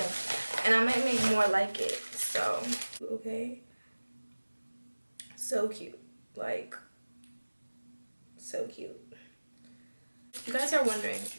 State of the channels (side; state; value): both; inverted; correlation -1.00